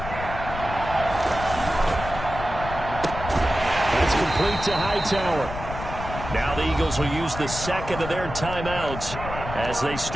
That's complete to Hightower. Now the Eagles will use the second of their timeouts as they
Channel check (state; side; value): noise; left; rumble, 8 dB below the sound